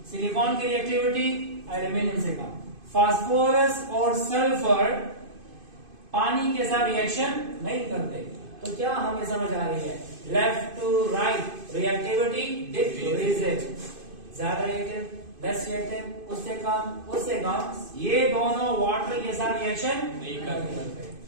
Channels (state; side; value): late; left; 2.5 ms